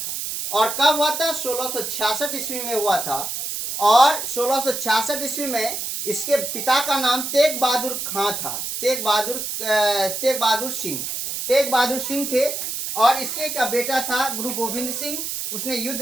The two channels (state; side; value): noise; right; hiss, 4 dB below the sound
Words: और कब हुआ था? 1666 ईस्वी में हुआ था। और 1666 ईस्वी में इसके पिता का नाम तेग बहादुर खां था, तेग बहादुर सिंह थे। और इसके का बेटा था गुरु गोविंद सिंह। उसने युद्ध